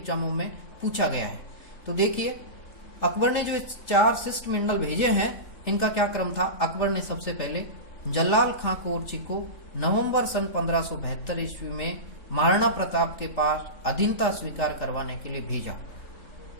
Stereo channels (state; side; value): late; right; 3.3 ms